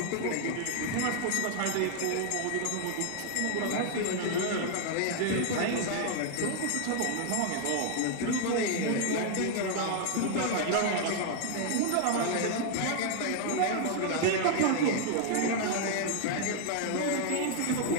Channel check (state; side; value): different; both; correlation 0.00